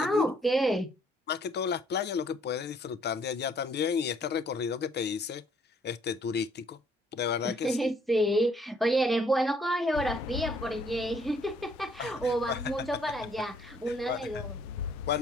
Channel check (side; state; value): both; normal; correlation 0.64